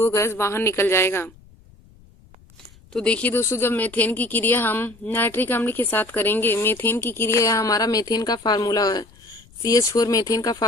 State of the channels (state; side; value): noise; left; rumble, 26 dB below the sound